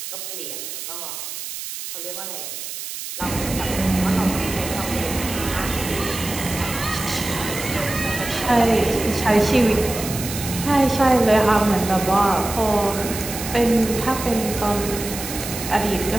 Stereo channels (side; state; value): right; noise; hiss, 8 dB below the sound